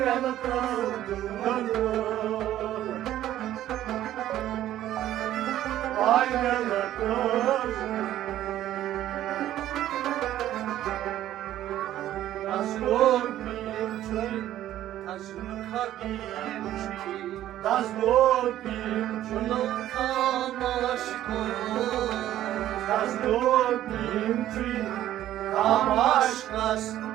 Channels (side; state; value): left; quieter; 12.9 dB